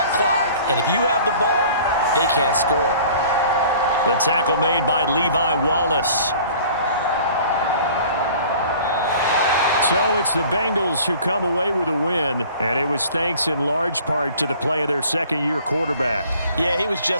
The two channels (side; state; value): both; inverted; correlation -0.49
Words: clock. And if you have the ball, they can't score. The tackle made by Levi Wallace. So it's the Bengals who come away with a win, and it was thanks in large part to the play of their second-year quarterback. Yeah, he was